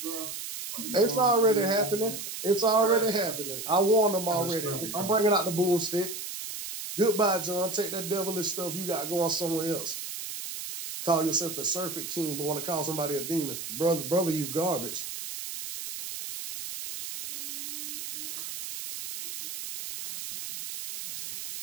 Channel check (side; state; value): right; noise; hiss, 7 dB below the sound